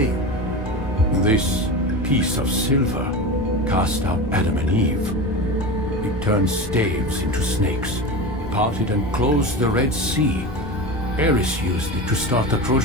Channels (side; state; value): both; normal; correlation 0.26